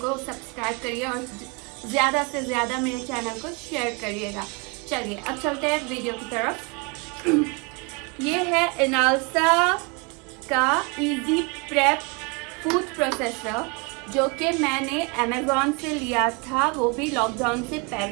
सब्सक्राइब करिए और ज़्यादा से ज़्यादा मेरे चैनल को शेयर करिएगा। चलिए अब चलते हैं वीडियो की तरफ। ये है इनालसा का इजी प्रेप फूड प्रोसेसर, जो कि मैंने अमेज़ॉन से लिया था, वो भी लॉकडाउन से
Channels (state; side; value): quieter; left; 30.9 dB